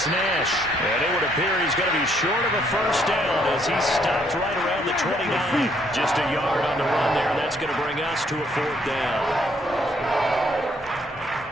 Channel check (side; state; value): both; normal; correlation 0.68